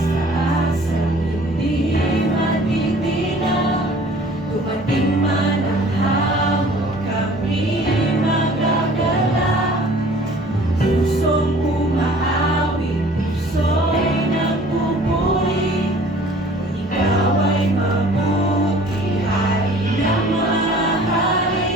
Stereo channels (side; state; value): both; normal; correlation 0.50